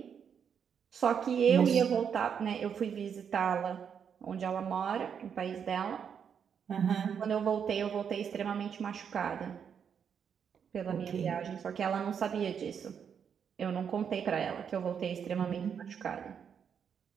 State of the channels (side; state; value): left; quieter; 7.4 dB